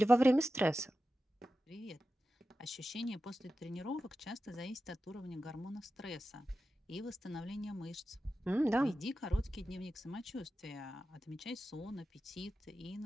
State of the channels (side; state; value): both; normal; correlation 0.93